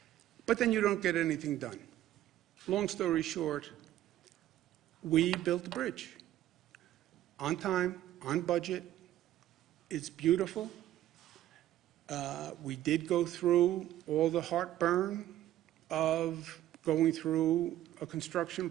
But then you don't get anything done. Long story short, we built the bridge on time, on budget. It's beautiful. We did go through all the heartburn of going through a construction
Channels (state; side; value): quieter; left; 13.2 dB